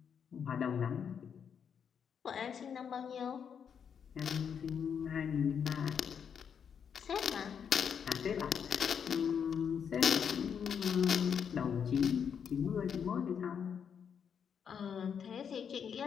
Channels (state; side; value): quieter; right; 7.4 dB